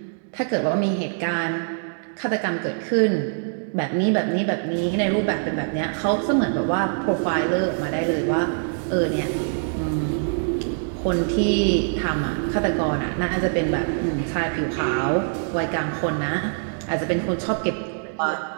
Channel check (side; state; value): left; silent; digital silence